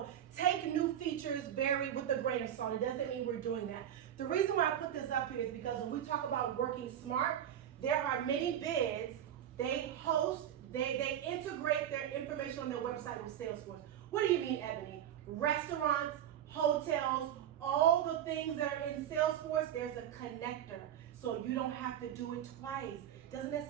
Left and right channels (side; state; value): left; quieter; 10.5 dB